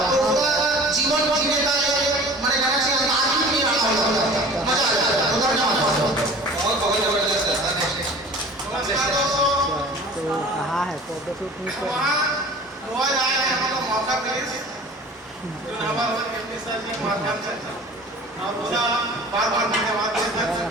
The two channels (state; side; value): normal; both; correlation 0.43